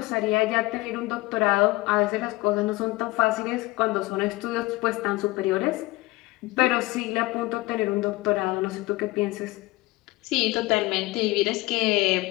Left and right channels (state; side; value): quieter; right; 20.8 dB